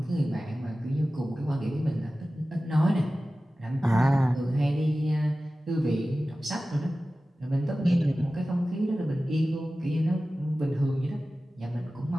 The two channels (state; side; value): normal; both; correlation 0.96